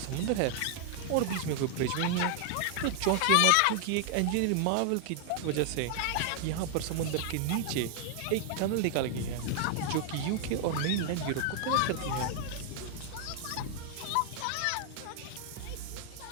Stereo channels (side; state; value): both; different; correlation 0.00